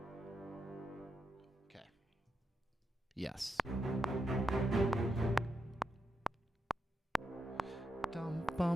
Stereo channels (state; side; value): normal; both; correlation 0.84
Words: Okay. Yes. Dum